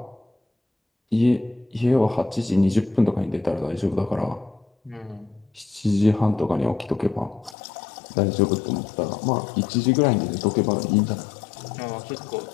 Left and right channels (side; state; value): right; drops out; at 7.6 s